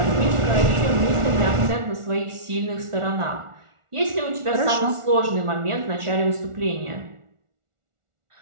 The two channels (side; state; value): left; late; 1.4 ms